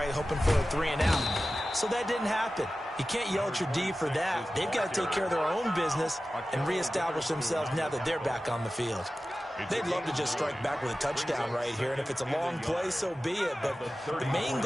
Hoping for a 3 and out. So that didn't happen. You can't yell at your D for that. They've got to take care of their own business and reestablish themselves now that they're back on the field. They'd love to just strike back with a touchdown right here, and if it's a long play, so be it. But the main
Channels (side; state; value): both; normal; correlation 0.95